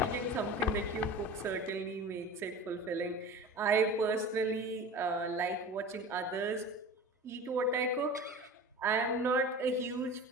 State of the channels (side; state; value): both; normal; correlation 0.36